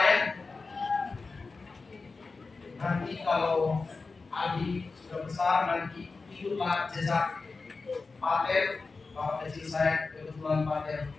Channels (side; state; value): right; quieter; 4.1 dB